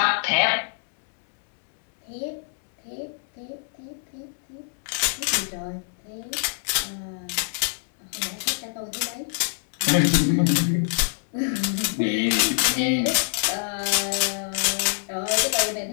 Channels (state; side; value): silent; right; digital silence